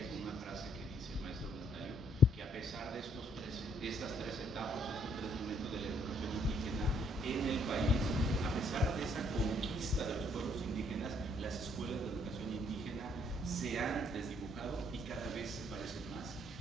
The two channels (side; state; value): both; normal; correlation 0.67